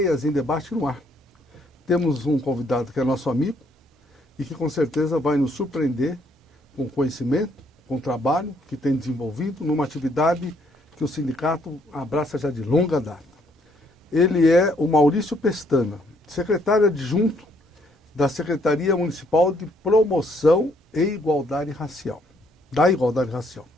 em debate no ar. Temos um convidado que é nosso amigo e que com certeza vai nos surpreender com conhecimento, com trabalho que tem desenvolvido numa atividade que o sindicato abraça já de longa data. Ele é o Maurício Pestana, secretário adjunto da Secretaria Municipal de Promoção e Igualdade Racial, da Igualdade Racial.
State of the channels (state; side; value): normal; both; correlation 0.68